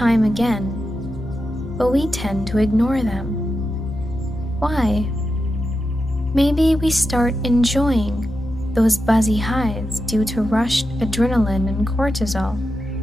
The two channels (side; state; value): both; normal; correlation 0.89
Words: again, but we tend to ignore them. Why? Maybe we start enjoying those buzzy highs due to rushed adrenaline and cortisol,